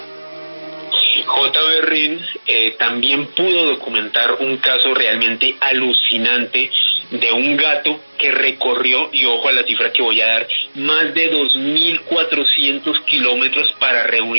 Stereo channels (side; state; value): both; inverted; correlation -1.00